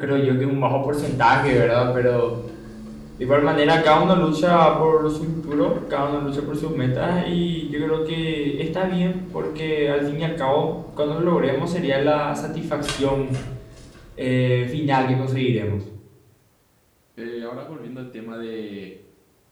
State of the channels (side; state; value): both; identical; correlation 1.00